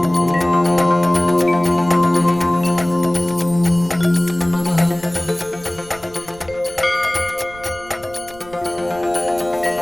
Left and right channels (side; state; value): right; noise; rumble, 22 dB below the sound